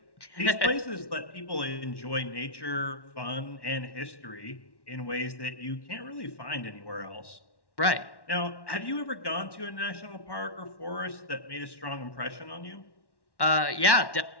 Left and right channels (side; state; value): right; late; 1.1 ms